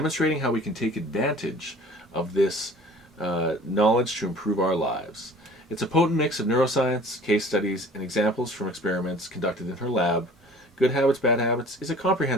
how we can take advantage of this knowledge to improve our lives. It's a potent mix of neuroscience, case studies, and examples from experiments conducted in her lab. Good Habits, Bad Habits is a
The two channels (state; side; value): normal; both; correlation 0.47